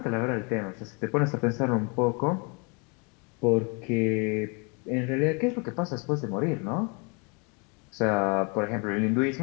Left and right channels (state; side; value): quieter; right; 33.4 dB